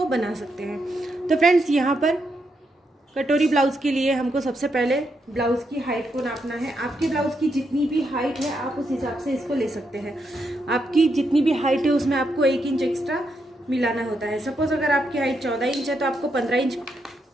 बना सकते हैं। तो फ्रेंड्स, यहाँ पर कटोरी ब्लाउज के लिए हमको सबसे पहले ब्लाउज की हाइट को नापना है। आपके ब्लाउज की जितनी भी हाइट है आप उस हिसाब से इसको ले सकते हैं। आपकी जितनी भी हाइट है उसमें आपको 1 इंच एक्स्ट्रा मिलाना होता है। सपोज अगर आपकी हाइट 14 इंच है तो आपको 15 इंच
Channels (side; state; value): both; normal; correlation 0.81